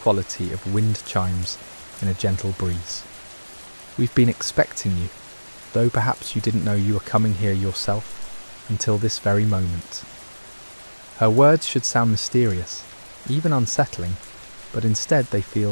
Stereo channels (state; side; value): inverted; both; correlation -1.00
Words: of wind chimes in a gentle breeze. "We've been expecting you, though perhaps you didn't know you were coming here yourself until this very moment." Her words should sound mysterious, even unsettling, but instead they